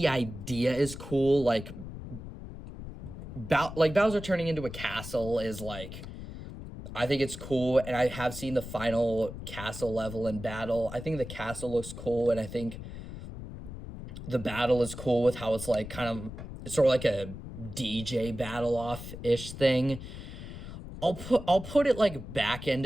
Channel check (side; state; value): left; noise; rumble, 11 dB below the sound